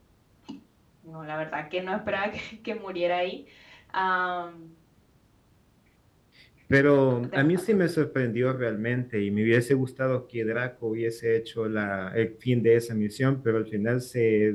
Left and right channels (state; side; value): identical; both; correlation 1.00